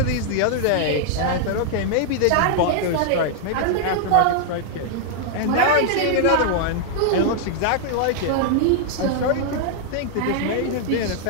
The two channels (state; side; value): different; both; correlation 0.00